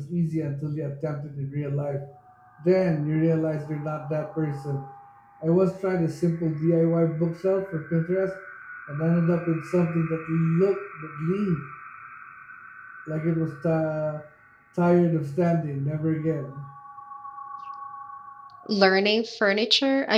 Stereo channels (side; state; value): both; identical; correlation 1.00